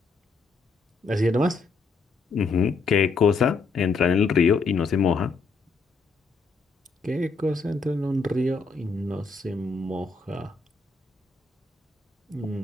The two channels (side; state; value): right; quieter; 4.1 dB